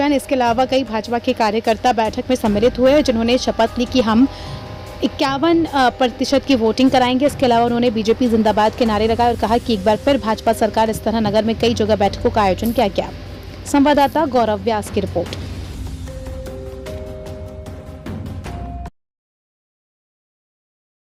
इसके अलावा कई भाजपा के कार्यकर्ता बैठक में सम्मिलित हुए, जिन्होंने शपथ ली कि हम 51% की वोटिंग कराएंगे। इसके अलावा उन्होंने बीजेपी जिंदाबाद के नारे लगाए और कहा कि एक बार फिर भाजपा सरकार इस तरह नगर में कई जगह बैठकों का आयोजन किया गया। संवाददाता गौरव व्यास की रिपोर्ट।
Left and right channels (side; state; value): both; identical; correlation 1.00